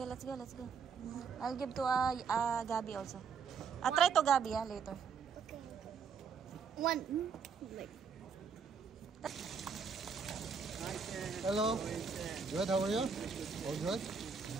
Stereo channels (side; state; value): left; quieter; 6.0 dB